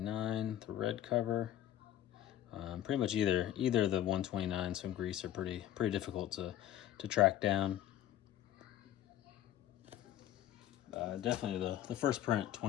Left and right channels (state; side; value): quieter; right; 12.2 dB